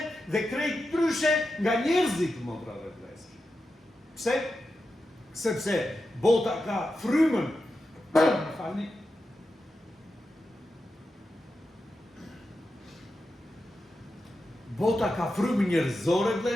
dhe krejt ndryshe nga njerëzit, motra dhe vëllezër. Pse? Sepse bota ka frymën. Falni. Bota ka frymën njerëzore,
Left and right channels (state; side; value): normal; both; correlation 0.90